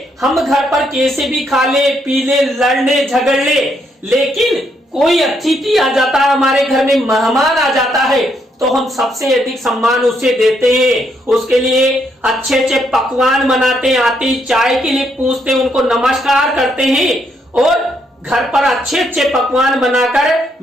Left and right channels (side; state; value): both; normal; correlation 0.75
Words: हम घर पर कैसे भी खा ले पी ले लड़ ले झगड़ ले, लेकिन कोई अतिथि आ जाता है, हमारे घर में मेहमान आ जाता है, तो हम सबसे अधिक सम्मान उसे देते हैं। उसके लिए अच्छे अच्छे पकवान बनाते हैं, आते ही चाय के लिए पूछते हैं, उनको नमस्कार करते हैं और घर पर अच्छे अच्छे पकवान बनाकर